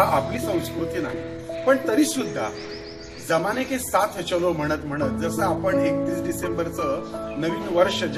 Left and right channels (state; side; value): identical; both; correlation 1.00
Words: आपली संस्कृती नाही, पण तरी सुद्धा जमाने के साथ चलो म्हणत म्हणत जसं आपण 31 डिसेंबरचं नवीन वर्ष